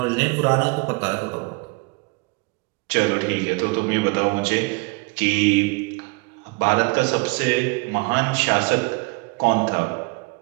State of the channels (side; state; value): left; quieter; 28.8 dB